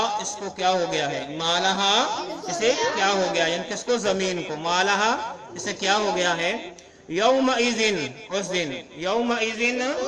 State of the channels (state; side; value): identical; both; correlation 1.00